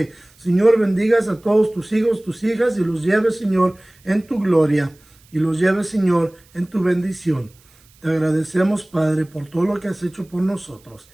Señor, bendigas a todos tus hijos, tus hijas y los lleves, Señor, en tu gloria y los lleves, Señor, en tu bendición. Te agradecemos, Padre, por todo lo que has hecho por nosotros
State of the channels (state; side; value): noise; right; hiss, 30 dB below the sound